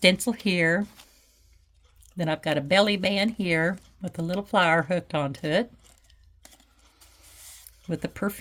here. Then I've got a belly band here with a little flower hooked onto it, with a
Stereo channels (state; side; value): identical; both; correlation 1.00